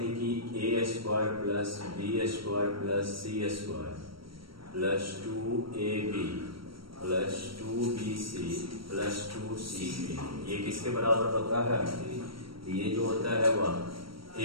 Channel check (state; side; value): late; left; 0.74 ms